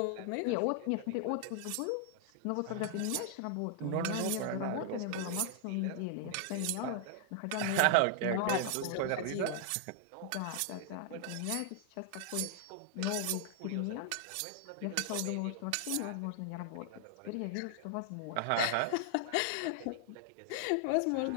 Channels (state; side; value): different; both; correlation 0.00